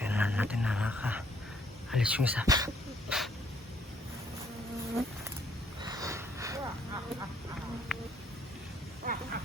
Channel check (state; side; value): normal; both; correlation 0.66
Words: natin na nakaka-alis yung isa.